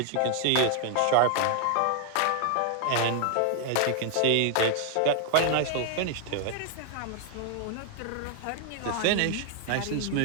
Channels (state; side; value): different; both; correlation 0.00